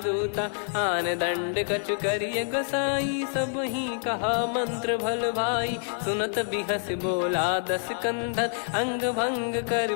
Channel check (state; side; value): silent; right; 59 dB below the other